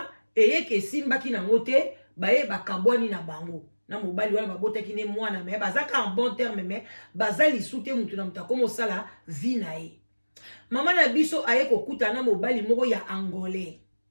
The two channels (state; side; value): inverted; both; correlation -1.00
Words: eyeke simbaki na ngote ba ye bakabwani na bango na mobali wana babotaki ne mwana me bazaka en bon terme me bazali sute mutu na mutako mosala vie na ye mama na biso aye kokuta na mobali moko ya angolais